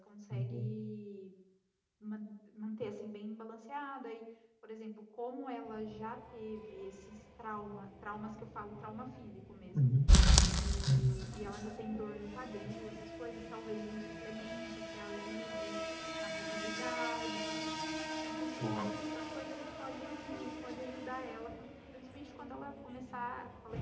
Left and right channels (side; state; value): both; identical; correlation 1.00